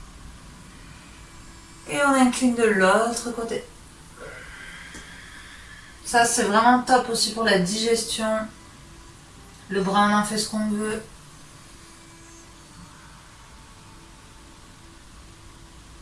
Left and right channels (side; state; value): both; identical; correlation 1.00